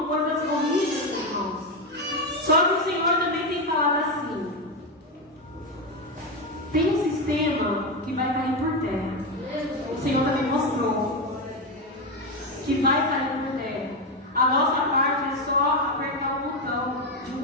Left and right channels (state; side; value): normal; both; correlation 0.11